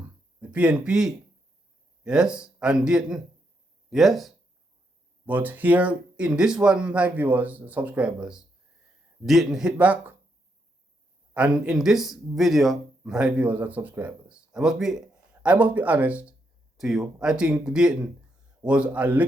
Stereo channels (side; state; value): both; normal; correlation 0.79